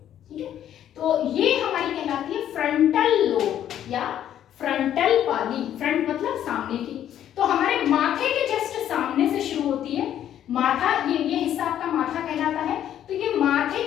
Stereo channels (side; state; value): right; quieter; 10.7 dB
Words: ठीक है। तो ये हमारी कहलाती है फ्रंटल लोब या फ्रंटल पाली। फ्रंट मतलब सामने की। तो हमारे माथे के जस्ट सामने से शुरू होती है माथा, ये हिस्सा आपका माथा कहलाता है। तो ये माथे